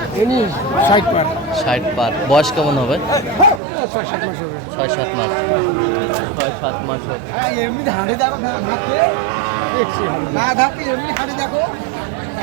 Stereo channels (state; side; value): drops out; left; at 3.6 s